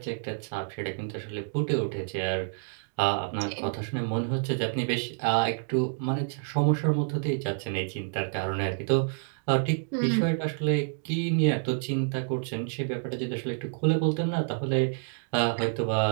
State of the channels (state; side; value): silent; left; digital silence